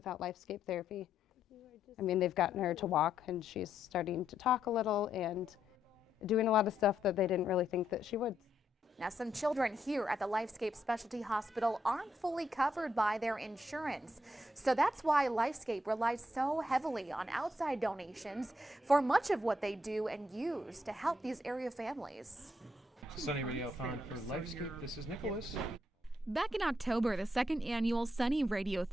therapy. I mean, they've gotten her to walk, and she's starting to talk a little and doing a lot of stuff that they didn't really think that she would. Now, some children here at the LifeScape Specialty Hospital aren't fully covered by their insurance. So that's why LifeScape relies so heavily on outside donations for much of what they do and use to help these area families. Sunny Radiothon for LifeScape. This is Nicholas. Back in October, the second annual Sunny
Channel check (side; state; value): both; normal; correlation 0.78